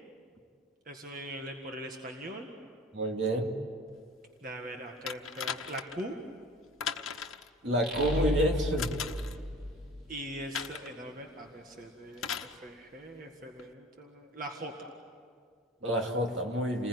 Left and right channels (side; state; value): both; normal; correlation 0.44